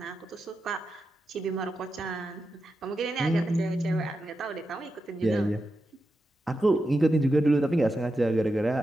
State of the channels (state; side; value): normal; both; correlation 0.89